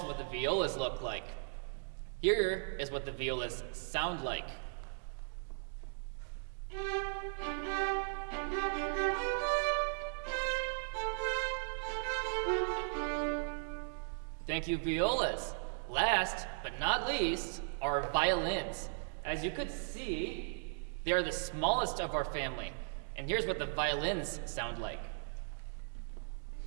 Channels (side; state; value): left; silent; digital silence